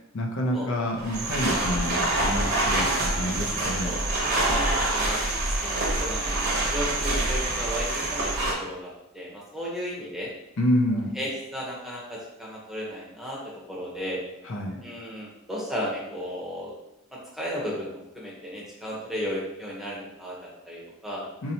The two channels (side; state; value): both; normal; correlation 0.37